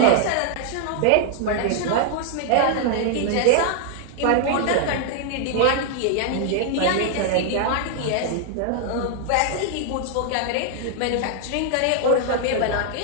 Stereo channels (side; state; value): both; different; correlation 0.00